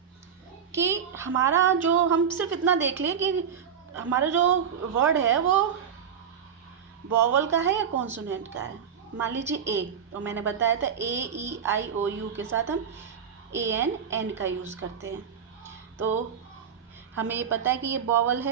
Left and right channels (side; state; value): left; quieter; 7.6 dB